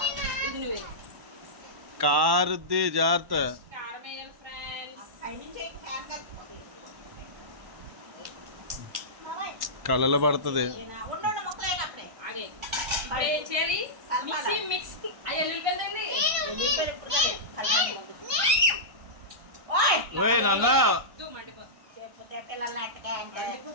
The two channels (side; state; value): left; late; 1.1 ms